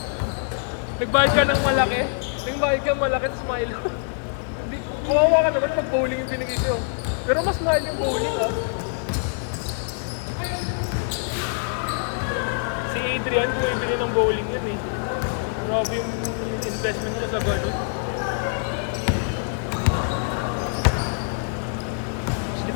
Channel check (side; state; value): right; silent; 62 dB below the other